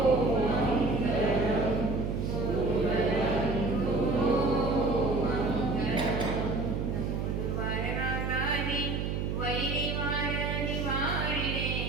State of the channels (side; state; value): right; noise; hum, 1 dB below the sound